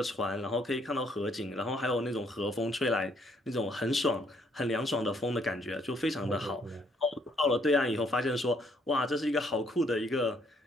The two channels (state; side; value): normal; both; correlation 0.68